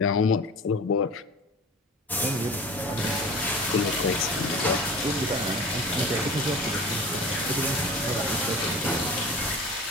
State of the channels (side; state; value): both; normal; correlation 0.38